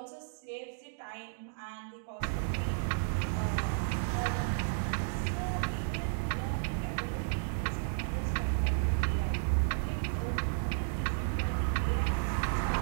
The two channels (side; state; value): left; silent; digital silence